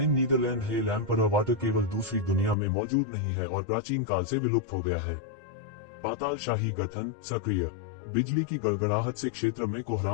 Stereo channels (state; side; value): drops out; right; at 2.6 s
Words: नीदरलैंड हिल एम्परर वाटर केवल दूसरी दुनिया में मौजूद नहीं है और प्राचीन काल से विलुप्त हो गया है। पाताल शाही गठन सक्रिय। बिजली की गड़गड़ाहट से क्षेत्र में